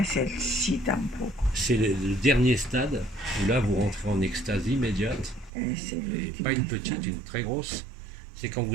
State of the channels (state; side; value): drops out; left; at 5.5 s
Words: el sí tampoco. c'est le dernier stade où là vous rentrez en extase immédiate, Es el et último pas une petite, estado. une très grosse. C'est quand